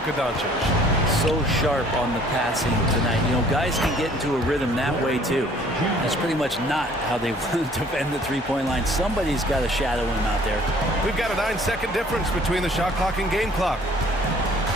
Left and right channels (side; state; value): both; normal; correlation 0.56